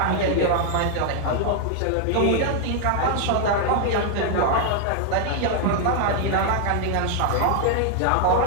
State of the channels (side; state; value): both; different; correlation 0.00